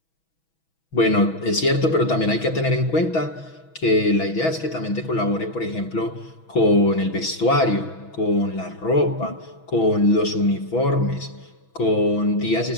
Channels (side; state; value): right; late; 6.2 ms